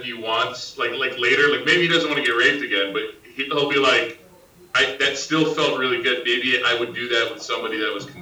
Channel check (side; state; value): both; identical; correlation 1.00